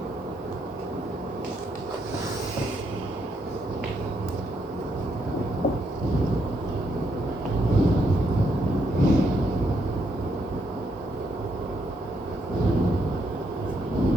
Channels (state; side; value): normal; both; correlation 0.76